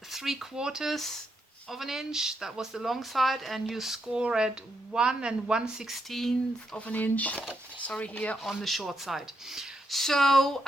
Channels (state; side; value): normal; both; correlation 0.80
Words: 3/4 of an inch, that was the long side, and you score at 1 1/16 of an inch, sorry, here on the short side. So